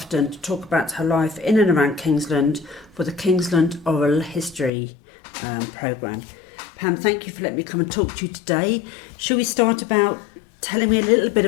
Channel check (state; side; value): drops out; right; at 4.7 s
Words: to talk about her life in and around Kingsland for the Kingsland Oral History programme. Pam, thank you for letting me come and talk to you today. Shall we start about telling me a little bit